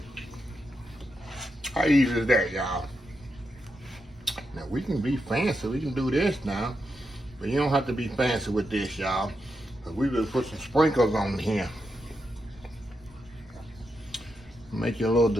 How easy is that, y'all? Now we can be fancy, we can do this now. But you don't have to be fancy with this, y'all. But we will put some sprinkles on here. Make your little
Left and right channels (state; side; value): normal; both; correlation 0.85